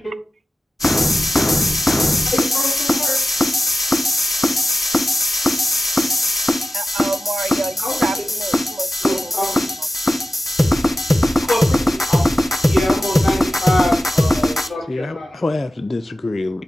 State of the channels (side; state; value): both; normal; correlation 0.93